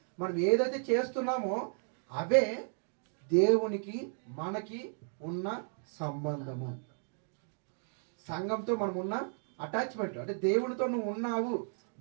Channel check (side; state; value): left; silent; 55 dB below the other